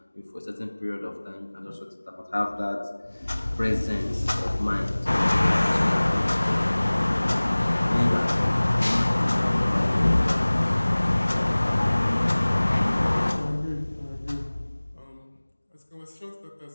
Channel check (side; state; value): both; inverted; correlation -1.00